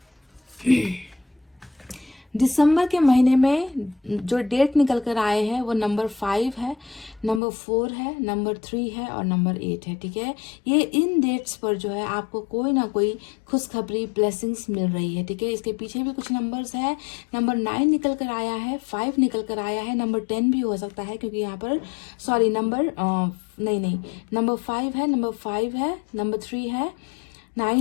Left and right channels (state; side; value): drops out; right; at 7.4 s